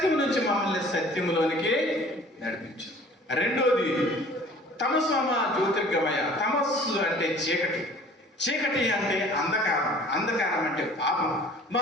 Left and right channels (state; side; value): normal; both; correlation 0.49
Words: నుంచి మమ్మల్ని సత్యంలోనికి నడిపించు. రెండోది తమసోమ జ్యోతిర్గమయ. తమస్సు అంటే చీకటి అంటే అంధకారం అంటే పాపం.